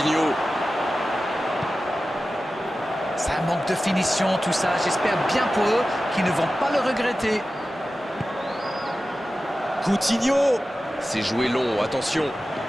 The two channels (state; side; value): normal; both; correlation 0.94